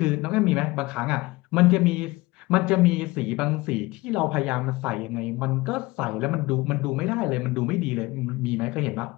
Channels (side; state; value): right; quieter; 21.3 dB